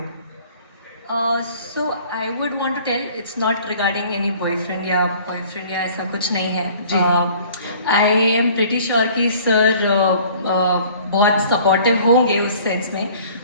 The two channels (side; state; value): both; inverted; correlation -0.51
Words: So I would want to tell it's not regarding any boyfriend या ऐसा कुछ नहीं है। I am pretty sure कि सर बहुत सपोर्टिव होंगे उस सेंस में,